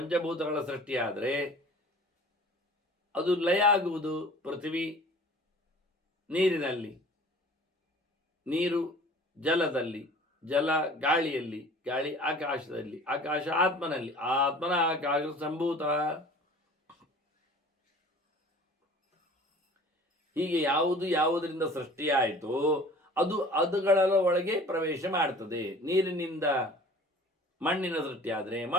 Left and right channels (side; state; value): both; normal; correlation 0.46